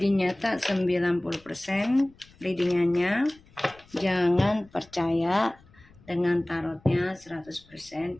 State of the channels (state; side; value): noise; left; rumble, 27 dB below the sound